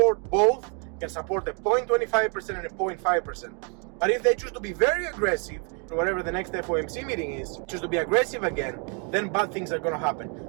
both, can support a 0.25% and a 0.5%. But if they choose to be very aggressive, whatever the next FOMC meeting is, choose to be aggressive again, then bad things are going to happen.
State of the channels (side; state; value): left; quieter; 37.2 dB